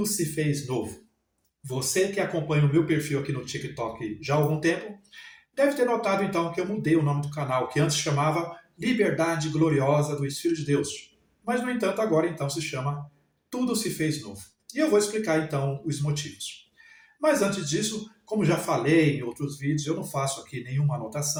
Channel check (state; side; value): identical; both; correlation 1.00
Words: se fez novo. Você que acompanha o meu perfil aqui no TikTok já há algum tempo, deve ter notado então que eu mudei o nome do canal, que antes chamava Liberdade Gloriosa dos Filhos de Deus. Mas, no entanto, agora então se chama Tudo se fez novo. E eu vou explicar então os motivos. Mas antes disso, como já falei em outros vídeos, eu não faço aqui nenhuma